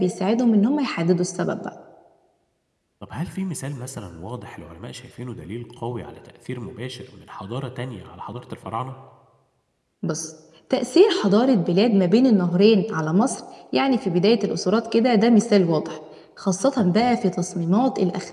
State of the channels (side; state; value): both; identical; correlation 1.00